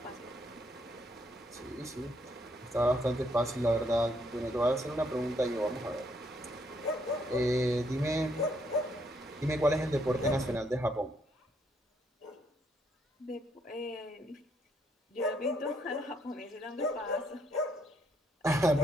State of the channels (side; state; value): both; normal; correlation 0.72